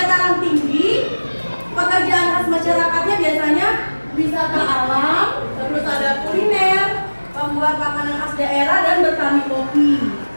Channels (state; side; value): inverted; both; correlation -1.00